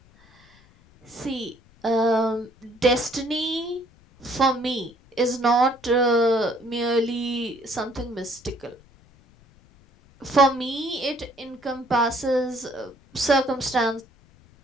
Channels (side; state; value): left; noise; rumble, 29 dB below the sound